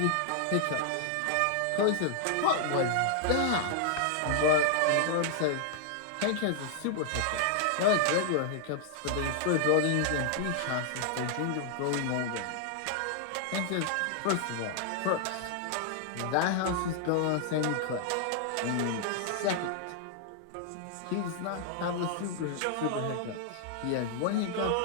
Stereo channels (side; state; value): both; different; correlation 0.00